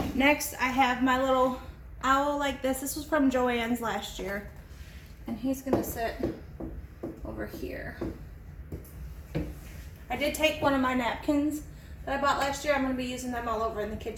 next I have my little owl like this. This was from Joann's last year, and he's gonna sit over here. I did take one of my napkins that I bought last year. I'm gonna be using them all over in the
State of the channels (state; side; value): identical; both; correlation 1.00